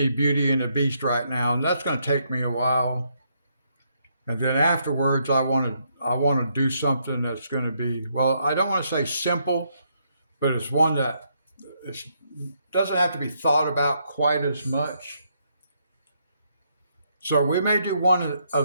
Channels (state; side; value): inverted; both; correlation -0.75